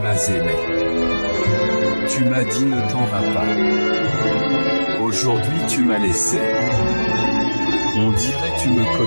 aimé. Tu m'as dit ne t'en vas pas. Aujourd'hui tu m'as laissé. On dirait tu me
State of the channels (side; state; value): both; inverted; correlation -1.00